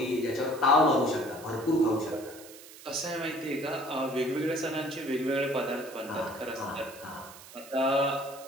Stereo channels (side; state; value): right; noise; hiss, 18 dB below the sound